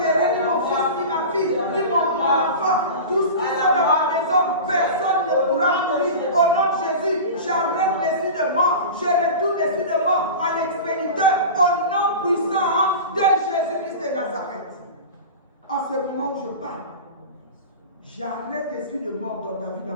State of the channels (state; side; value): inverted; both; correlation -0.31